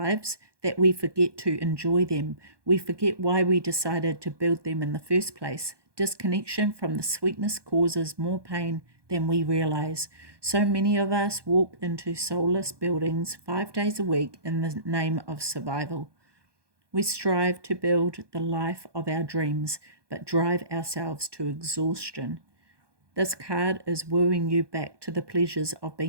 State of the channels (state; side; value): late; left; 1.2 ms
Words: that we forget to enjoy them. We forget why we decided to build them in the first place. Disconnection from the sweetness causes more pain than we realize. So many of us walk into soulless buildings 5 days a week in the name of survival. We strive to build the life of our dreams, but drive ourselves to exhaustion. This card is wooing you back to the pleasures of